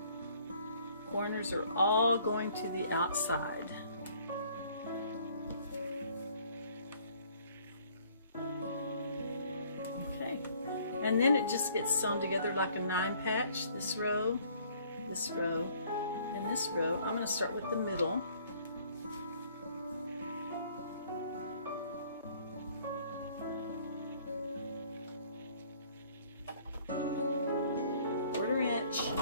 Corners are all going to the outside. And then it just gets sewn together like a 9-patch. This row, and this row. I'm going to start with the middle. Quarter-inch.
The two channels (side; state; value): both; inverted; correlation -0.59